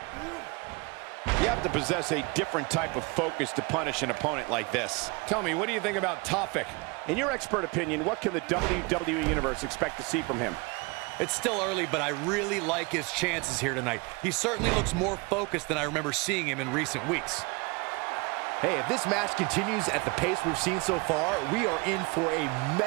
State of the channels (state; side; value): quieter; left; 27.8 dB